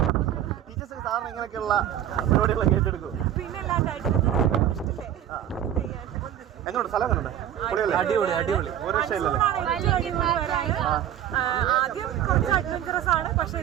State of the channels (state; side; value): quieter; left; 11.0 dB